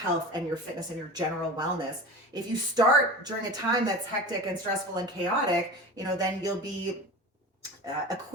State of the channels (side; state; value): both; normal; correlation 0.33